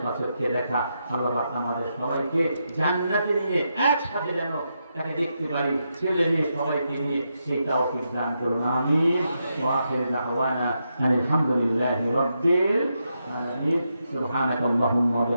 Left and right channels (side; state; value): both; inverted; correlation -0.84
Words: সচক্ষে দেখা। আল্লাহ পাক আমাদের সবাইকে জান্নাতে নিয়ে একসাথে যেন তাকে দেখতে পারি, ছেলে মেয়ে সবাইকে নিয়ে, সেই তৌফিক দান করুন। আমিন। ওয়া আখিরু দাওয়ানা আলহামদুলিল্লাহি রাব্বিল আলামিন। সুবহানাকা আল্লাহুম্মা ওয়া